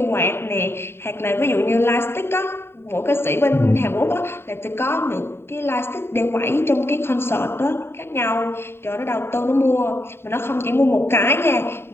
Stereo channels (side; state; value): right; late; 0.11 ms